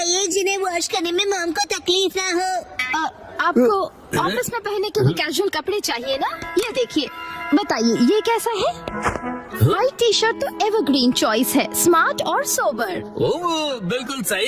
जिन्हें वॉश करने में मॉम को तकलीफ ना हो। आपको ऑफिस में पहनने के लिए कैजुअल कपड़े चाहिए ना? ये देखिए, बताइए ये कैसा है? व्हाइट टी शर्ट तो एवरग्रीन चॉइस है, स्मार्ट और सोबर। ओह, बिल्कुल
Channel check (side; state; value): both; identical; correlation 1.00